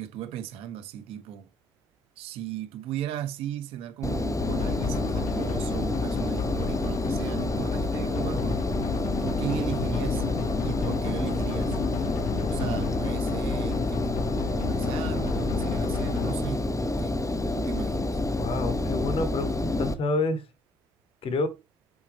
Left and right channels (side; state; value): both; normal; correlation 0.68